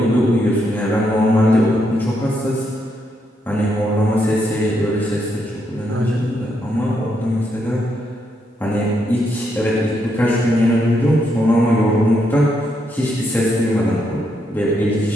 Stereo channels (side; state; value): both; normal; correlation 0.78